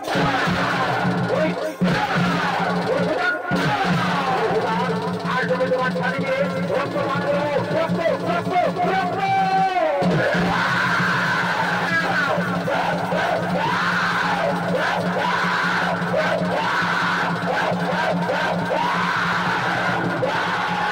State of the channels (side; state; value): both; identical; correlation 1.00